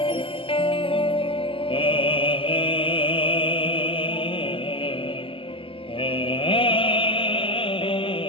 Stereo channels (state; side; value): late; right; 0.26 ms